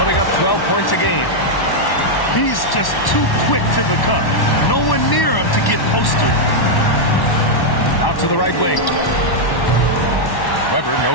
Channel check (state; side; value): late; right; 1.1 ms